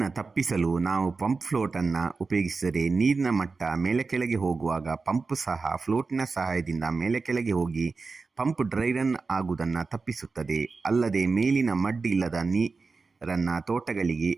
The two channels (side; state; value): left; quieter; 4.2 dB